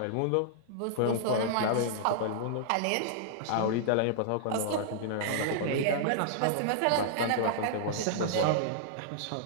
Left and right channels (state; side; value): different; both; correlation -0.01